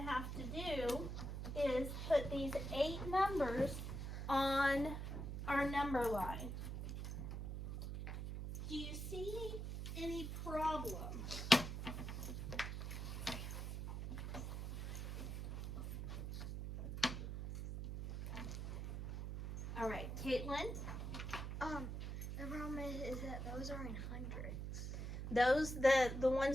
have to do is put these 8 numbers on our number line. Do you see any problem? All right, Caitlin? The problem is that those are in hundreds. Those, the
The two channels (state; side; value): noise; right; hum, 4 dB below the sound